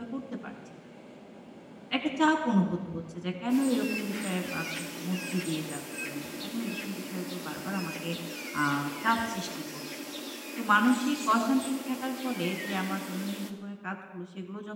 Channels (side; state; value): both; identical; correlation 1.00